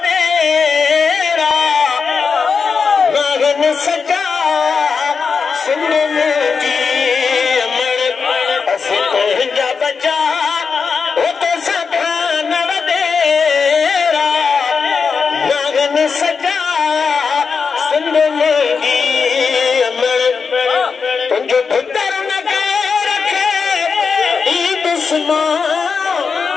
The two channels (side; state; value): right; quieter; 5.4 dB